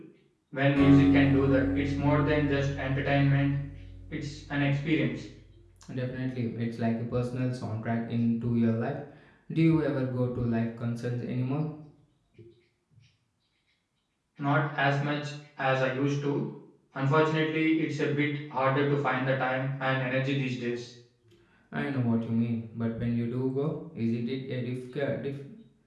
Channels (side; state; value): both; identical; correlation 1.00